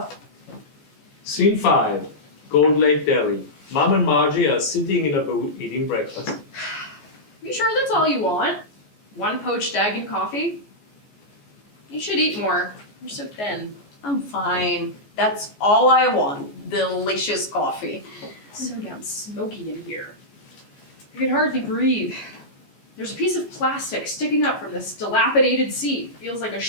Scene 5, Gold Lake Deli. Mom and Margie are sitting in a booth eating breakfast. You sure that's all you want? One poached egg and coffee? You should eat more. You're so thin. I'm fine. That's all I want. Delicious coffee. It's so damn smoky in here. I can hardly breathe. There's a piece of plastic sticking up from this dilapidated seat. Feels like a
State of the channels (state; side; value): late; right; 14 ms